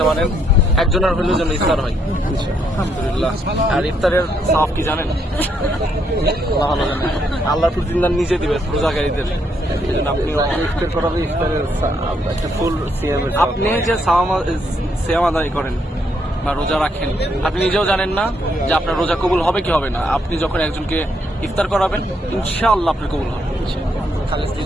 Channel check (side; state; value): both; normal; correlation 0.74